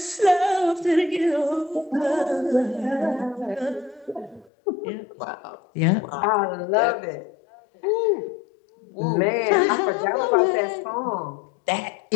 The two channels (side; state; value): right; drops out; at 4.5 s